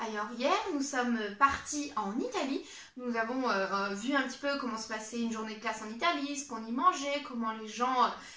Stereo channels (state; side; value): identical; both; correlation 1.00